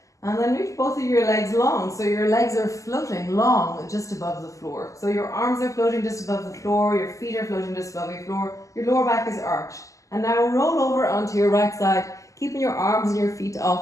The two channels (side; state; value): right; late; 0.16 ms